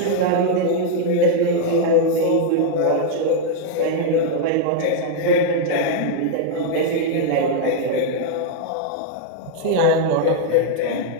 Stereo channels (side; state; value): both; different; correlation -0.01